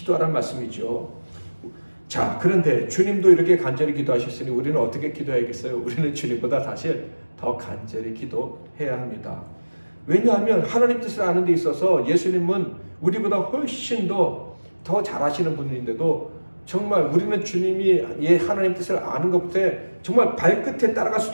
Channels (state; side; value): inverted; both; correlation -1.00